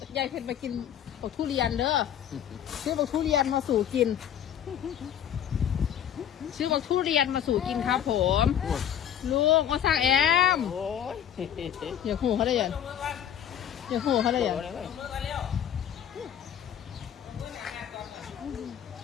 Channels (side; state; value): right; quieter; 9.7 dB